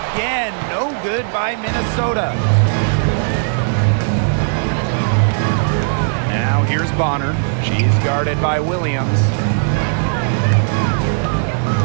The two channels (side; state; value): left; silent; 68 dB below the other